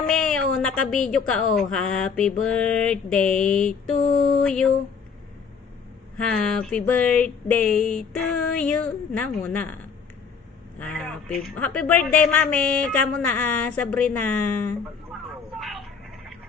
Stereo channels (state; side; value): quieter; right; 6.0 dB